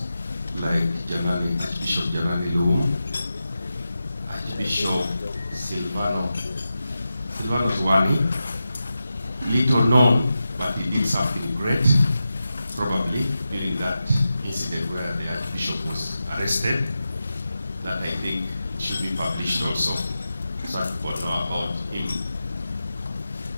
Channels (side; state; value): both; inverted; correlation -0.92